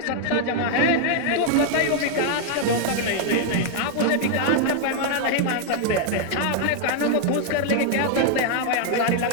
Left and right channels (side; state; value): both; different; correlation 0.00